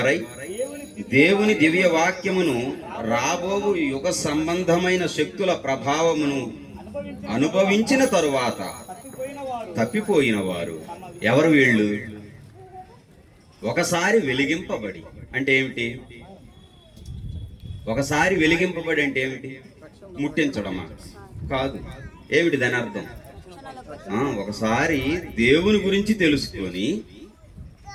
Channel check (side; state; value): both; identical; correlation 1.00